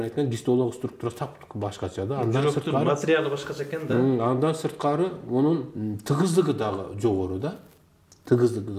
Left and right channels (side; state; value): both; identical; correlation 1.00